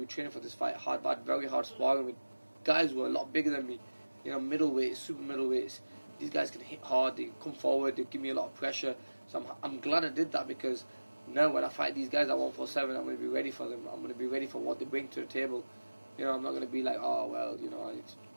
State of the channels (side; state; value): both; inverted; correlation -1.00